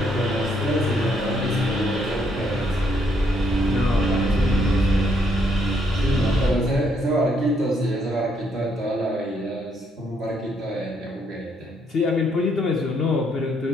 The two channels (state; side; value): normal; both; correlation 0.72